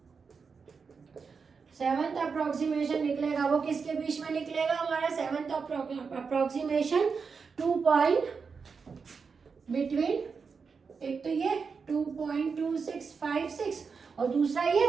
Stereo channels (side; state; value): left; quieter; 5.4 dB